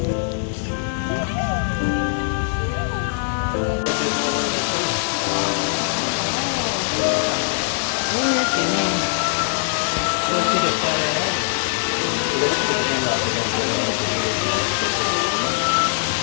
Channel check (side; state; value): right; silent; digital silence